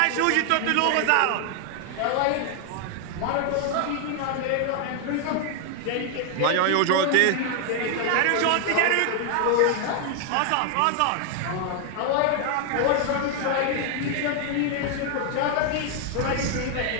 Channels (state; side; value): different; both; correlation 0.00